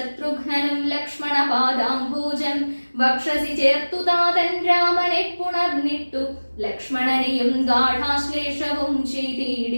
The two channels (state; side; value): inverted; both; correlation -1.00